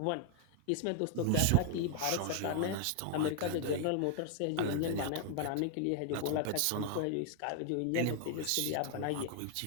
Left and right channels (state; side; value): different; both; correlation 0.00